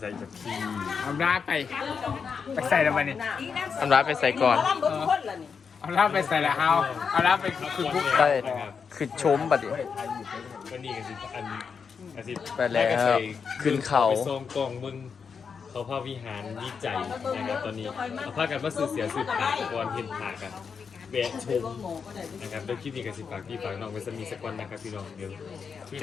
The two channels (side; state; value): right; quieter; 6.0 dB